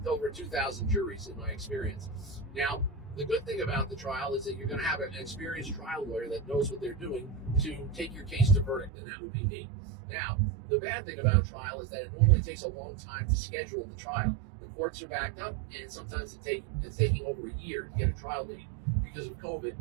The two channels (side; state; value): left; drops out; at 8.9 s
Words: over 2,000 juries in my experience. Now, the good thing about the trial is that you're going to have an experienced trial lawyer that knows what they're doing to take your case to verdict, and that would be me. Now, the bad thing about trial is that it normally takes a long time to schedule the trial. The courts are backed up, and sometimes it's taking over a year to get a trial date. Because of